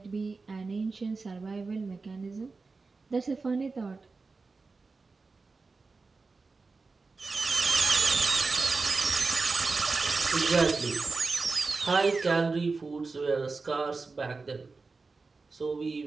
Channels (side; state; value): left; quieter; 4.1 dB